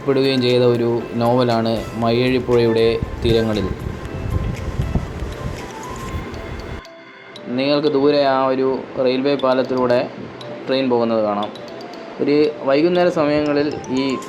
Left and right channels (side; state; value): both; identical; correlation 1.00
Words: ചെയ്ത ഒരു നോവലാണ് മയ്യഴി പുഴയുടെ തീരങ്ങളിൽ. നിങ്ങൾക്ക് ദൂരെ ആ ഒരു റെയിൽവേ പാലത്തിലൂടെ ട്രെയിൻ പോകുന്നത് കാണാം. ഒരു വൈകുന്നേര സമയങ്ങളിൽ ഈ